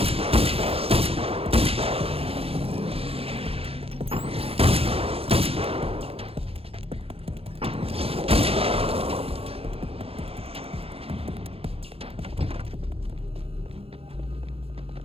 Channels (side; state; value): left; late; 0.28 ms